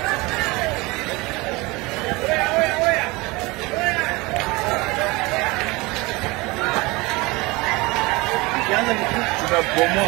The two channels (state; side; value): quieter; left; 23.6 dB